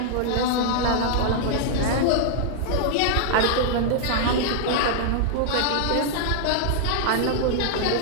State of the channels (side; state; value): both; different; correlation -0.01